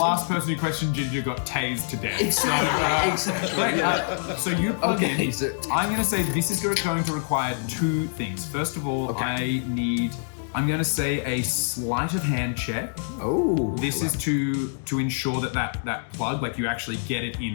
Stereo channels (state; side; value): silent; right; digital silence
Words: person who questioned Ginger got tased to death. Exactly. So you plug Okay, in. so- I'm going to say this is going to require two things. First of all, I'm going to say a sleight of hand check. Oh. This is to ensure that plug, like you actually get it